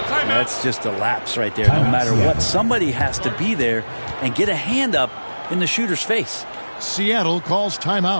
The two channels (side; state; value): both; inverted; correlation -1.00